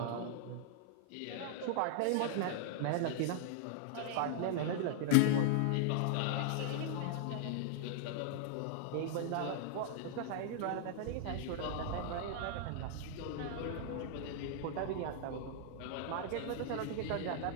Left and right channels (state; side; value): different; both; correlation -0.01